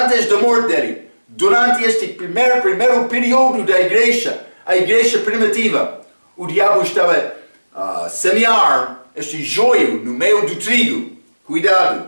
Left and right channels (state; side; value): inverted; both; correlation -1.00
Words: da morte dele. Durante este primeiro período da igreja, a igreja primitiva, o diabo estava a semear este joio no meio do trigo.